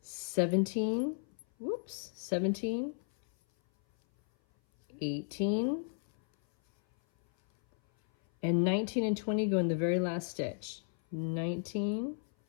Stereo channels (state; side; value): silent; right; 55 dB below the other